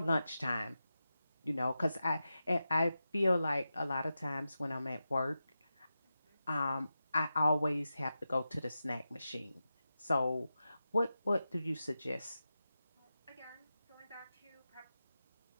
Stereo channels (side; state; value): both; inverted; correlation -0.91